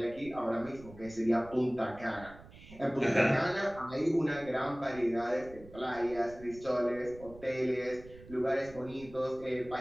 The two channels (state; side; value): noise; right; rumble, 19 dB below the sound